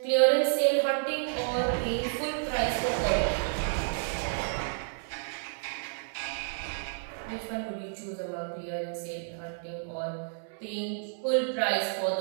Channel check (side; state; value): left; silent; digital silence